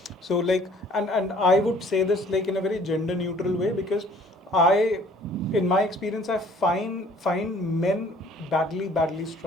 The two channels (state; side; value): normal; both; correlation 0.55